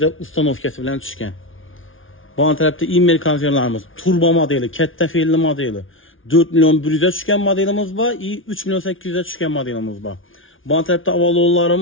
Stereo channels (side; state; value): right; late; 0.58 ms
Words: ustanovkası bilen düşkən. Bu tərəfdə İmmel konservlərimiz turbo modeli, kətdə felli modeli 4.100'e düşkən modelimiz var, 3.800'e düşkən modelimiz var. Bu tərəfdə